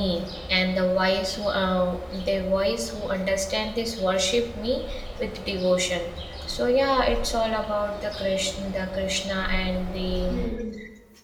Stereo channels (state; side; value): identical; both; correlation 1.00